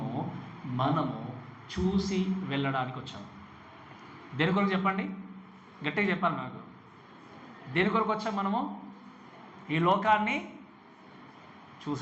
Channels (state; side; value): identical; both; correlation 1.00